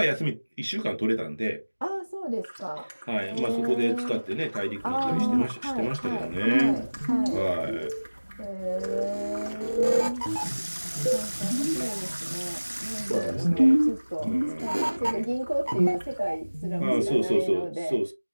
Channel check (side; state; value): both; inverted; correlation -1.00